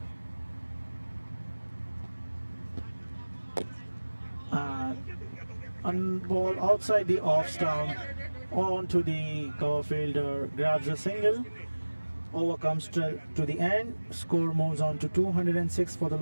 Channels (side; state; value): both; inverted; correlation -1.00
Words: And ball outside the off stump onto the cover fielder, grabs a single. Over comes to the end. Score moves on to 206 for the